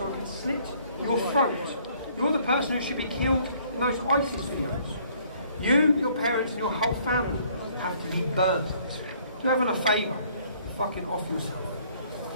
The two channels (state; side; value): inverted; both; correlation -0.61